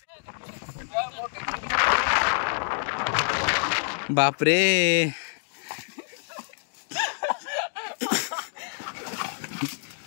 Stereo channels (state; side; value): silent; right; digital silence